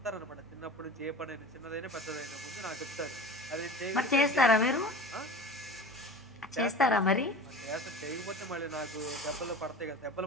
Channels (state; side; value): normal; both; correlation 0.36